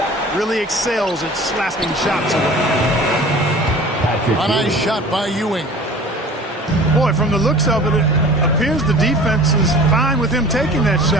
Really excels at slapping shots away. A nice shot by Ewing. Boy, from the looks of it, it appears the defense is fine with him taking that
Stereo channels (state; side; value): normal; both; correlation 0.43